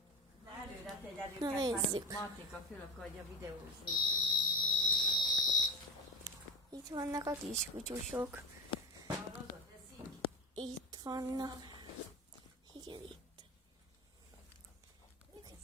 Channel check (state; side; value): normal; both; correlation 0.28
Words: Na nézzük. Itt vannak a kiskutyusok. Itt vannak. Igen, itt.